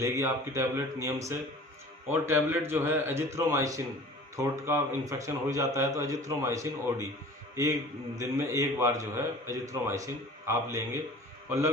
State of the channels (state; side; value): normal; both; correlation 0.43